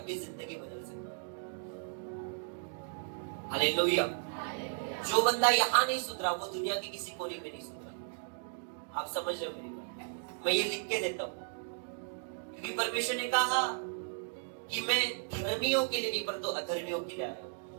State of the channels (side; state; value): left; silent; digital silence